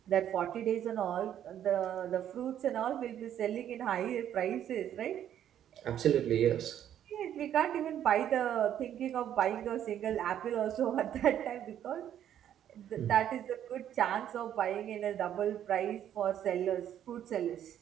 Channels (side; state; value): left; quieter; 10.5 dB